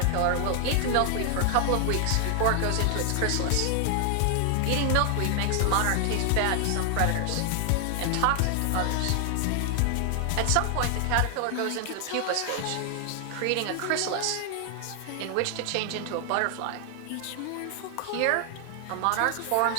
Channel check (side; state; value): both; different; correlation 0.00